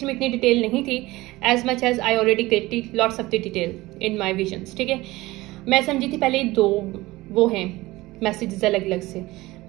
में इतनी डिटेल नहीं थी as much as I already get lots of the detail in my visions, ठीक है। मैं समझी थी पहले 2 वो हैं मैसेजेस अलग अलग से,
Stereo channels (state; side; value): quieter; left; 19.4 dB